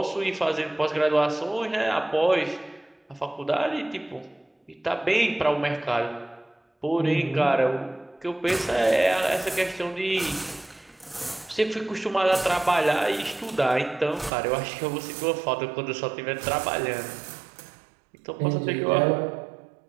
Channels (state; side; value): drops out; left; at 14.3 s